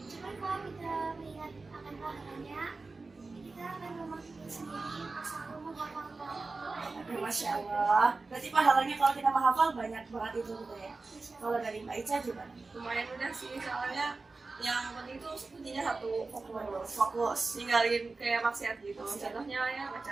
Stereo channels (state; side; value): quieter; left; 3.8 dB